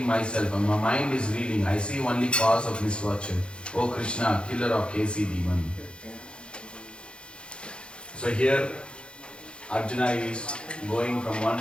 myself and my mind is reeling. I see only cause of misfortune. O Krishna, killer of KC demon. So here Arjuna is going from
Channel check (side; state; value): right; late; 0.055 ms